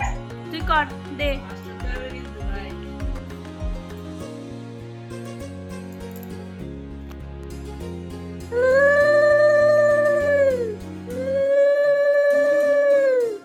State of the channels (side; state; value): both; identical; correlation 1.00